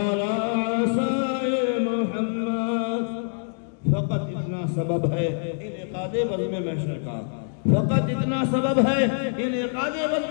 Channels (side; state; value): right; silent; digital silence